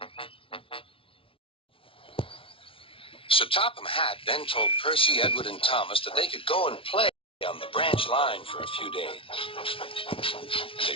Sir Topham Hatt then told Percy, Edward, and Thomas that they could go and play on the branch line for a few days.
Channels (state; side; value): late; right; 0.26 ms